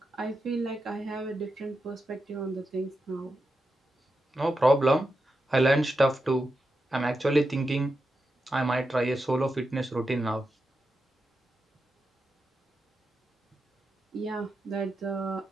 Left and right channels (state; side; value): normal; both; correlation 0.88